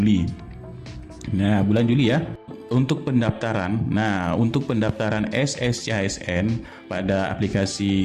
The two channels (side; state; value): both; identical; correlation 1.00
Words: Nah, bulan Juli ya. Untuk pendaftaran, untuk pendaftaran SSCASN pada